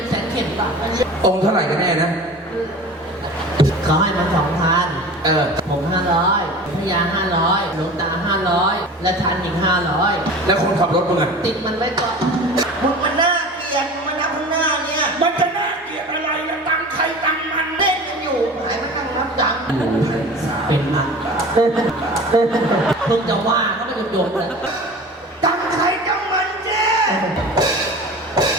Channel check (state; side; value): normal; both; correlation 0.37